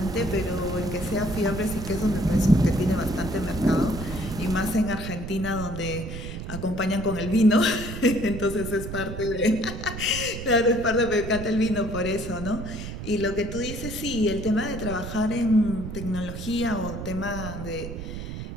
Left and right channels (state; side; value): noise; right; rumble, 8 dB below the sound